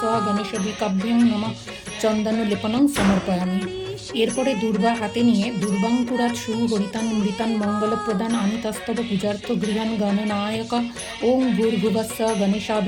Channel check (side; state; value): both; identical; correlation 1.00